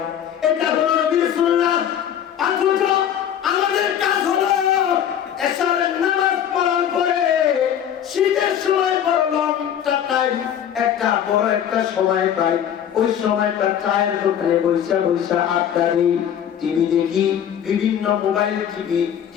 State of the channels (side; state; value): right; quieter; 9.5 dB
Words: এটা হলো নবীর সুন্নাহ। অথচ আমাদের কাজ হলো এশারের নামাজ পড়ার পরে শীতের সময় বড় লম্বা টাইম, একটা বড় একটা সময় পাই, ওই সময়টা চায়ের দোকানে বৈশা আড্ডা দিই, টিভি দেখি, বিভিন্ন মোবাইল